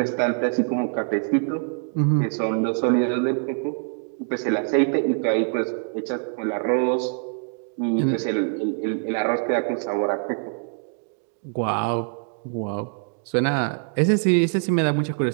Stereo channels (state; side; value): silent; left; 62 dB below the other